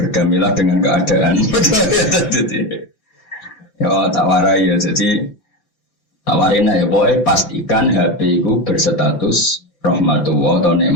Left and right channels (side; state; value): right; late; 5.8 ms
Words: dengan keadaan. Ya tak warai ya, jadi tawarin ya pokoknya pastikan HP itu berstatus rahmatullah atau